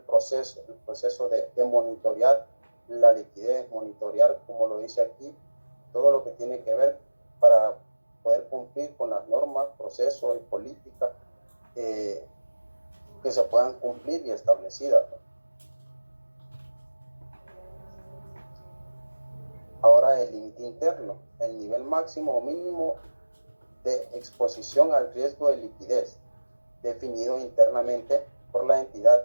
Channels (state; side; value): inverted; both; correlation -1.00